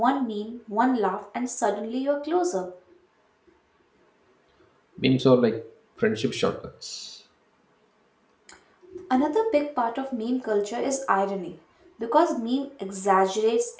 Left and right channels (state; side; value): identical; both; correlation 1.00